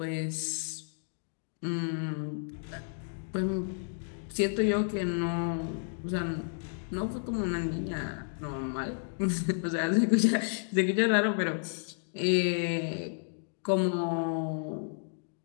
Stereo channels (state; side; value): silent; right; digital silence